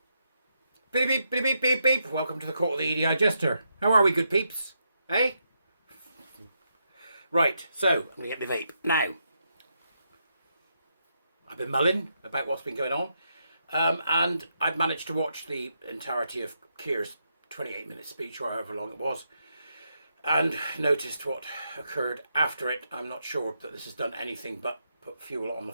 Beep, beep, beep, beep, beep, beep. Welcome to the court of the Edijester. How are we, good peeps? Hey? Right, so, I'm going to get my vape. Now, I've been mulling about what's been going on, and I've managed to watch the entirety of Kier's 28-minute speech, or however long it was, and noticed what occurred after it. I'm not sure that this has done anything but put fuel on the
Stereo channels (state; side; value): inverted; both; correlation -0.81